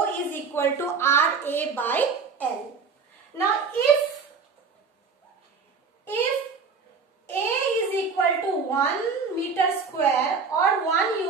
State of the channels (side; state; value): left; quieter; 5.2 dB